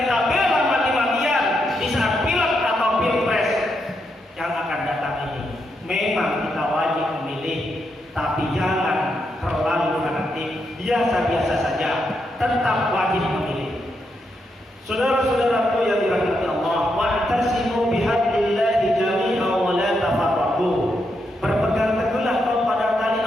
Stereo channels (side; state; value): both; normal; correlation 0.81